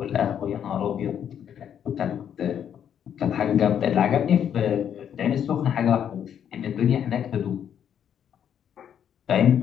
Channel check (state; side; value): quieter; right; 9.0 dB